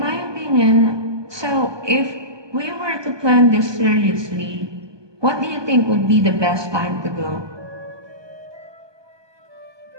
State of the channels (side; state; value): left; late; 1.2 ms